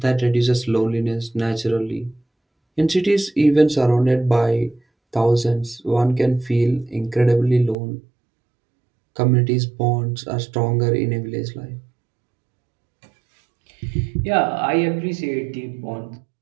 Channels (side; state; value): left; drops out; at 7.8 s